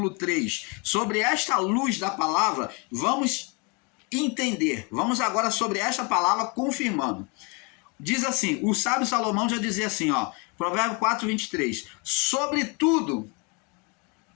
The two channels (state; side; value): quieter; right; 31.5 dB